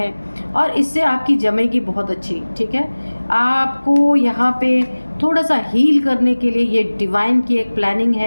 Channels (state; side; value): inverted; both; correlation -1.00